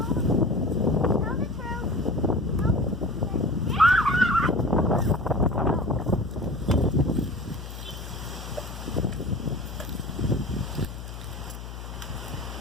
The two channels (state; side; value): noise; left; hum, 10 dB below the sound